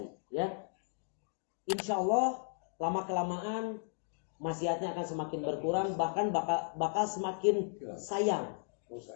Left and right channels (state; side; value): silent; right; digital silence